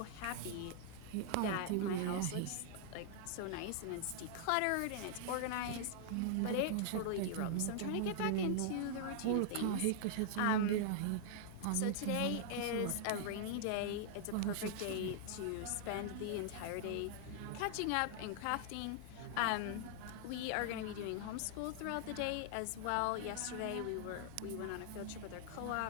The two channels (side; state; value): both; different; correlation -0.01